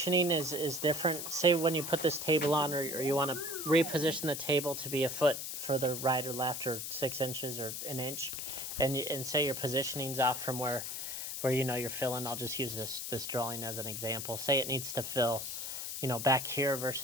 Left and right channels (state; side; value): noise; left; hiss, 5 dB below the sound